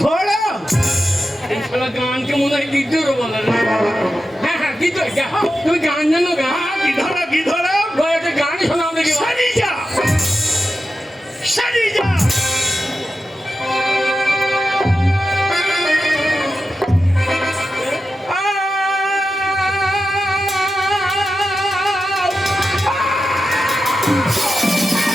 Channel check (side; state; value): both; normal; correlation 0.91